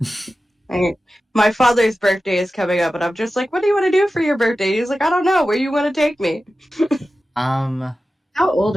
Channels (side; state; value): both; normal; correlation 0.94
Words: My father's birthday is coming up, and I'm just like, what do you want to do for your birthday? He's like, I don't know. Where you want to take me? How old